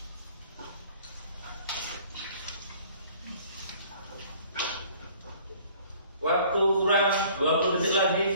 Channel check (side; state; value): both; inverted; correlation -0.54